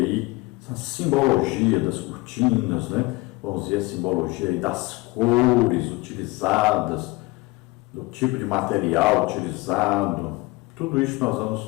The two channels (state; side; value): quieter; right; 22.8 dB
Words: a simbologia das cortinas, né? Vamos ver a simbologia aí das cores utilizadas, do tipo de material utilizado. Tudo isso nós